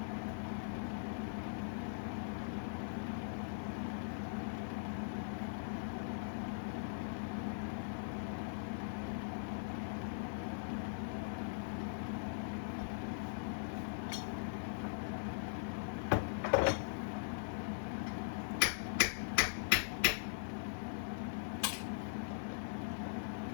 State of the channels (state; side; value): silent; right; 50 dB below the other